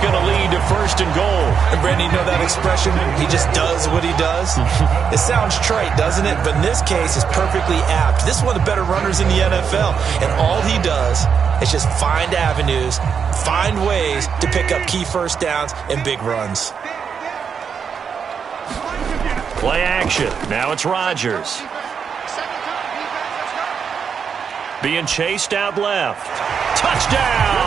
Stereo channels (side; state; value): left; quieter; 6.7 dB